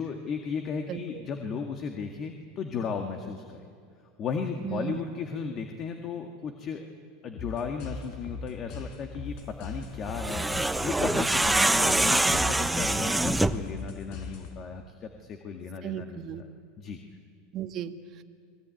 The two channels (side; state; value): both; normal; correlation 0.78